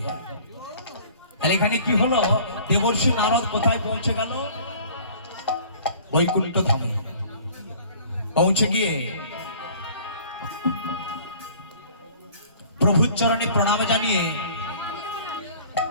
তাহলে এখানে কি হলো দেবর্ষি নারদ কোথায় পৌঁছে গেল বৈকুণ্ঠ ধামে পৌঁছে গিয়ে প্রভুর চরণে প্রণাম জানিয়ে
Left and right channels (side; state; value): both; inverted; correlation -0.50